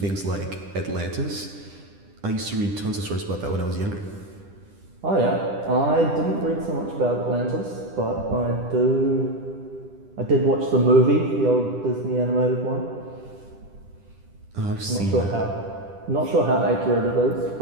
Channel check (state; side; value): late; left; 10 ms